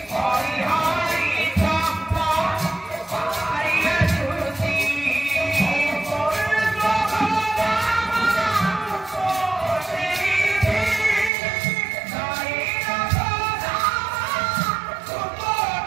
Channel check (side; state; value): left; drops out; at 11.3 s